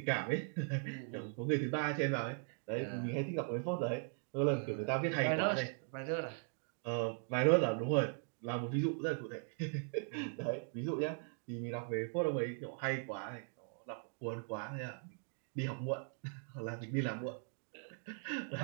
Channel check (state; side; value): silent; left; 52 dB below the other